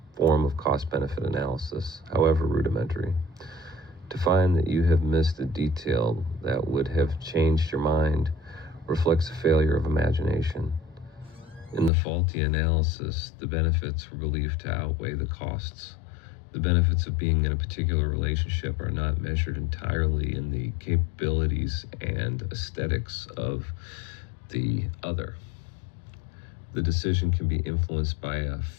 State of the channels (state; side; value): drops out; right; at 11.9 s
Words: form of cost-benefit analysis, however rudimentary. To find that you have missed a detail that would have changed your mind reflects a failure of imagination. In the faulty analysis, the benefits were believed to outweigh the costs. The benefits of being in a particular relationship are not measured entirely in the capabilities and aesthetics of the other. The decision can be influenced by a